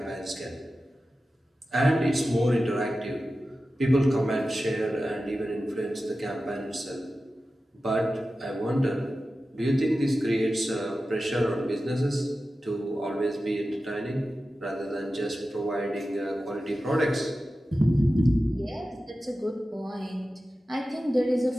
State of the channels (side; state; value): both; normal; correlation 0.94